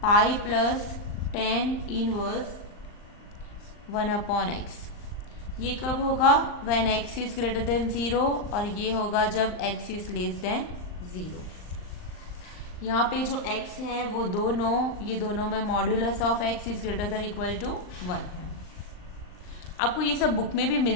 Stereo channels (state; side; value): late; right; 39 ms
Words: plus tan inverse 1/x। ये कब होगा? When x is greater than 0, और ये होगा जब x इज लेस देन 0। यहाँ पे जो x है वो ये दोनों में modulus of x is greater than equal to 1 है। आपको ये सब बुक में भी